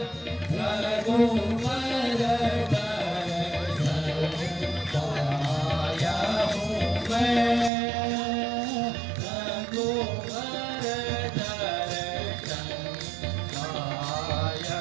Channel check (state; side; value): drops out; left; at 7.7 s